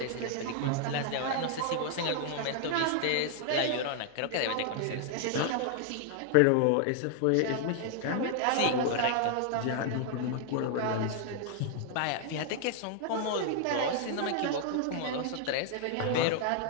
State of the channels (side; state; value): both; different; correlation 0.00